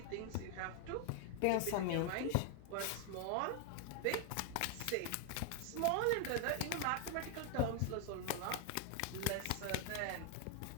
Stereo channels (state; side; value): different; both; correlation 0.00